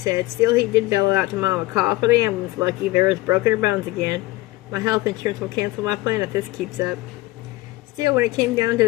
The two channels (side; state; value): right; quieter; 18.9 dB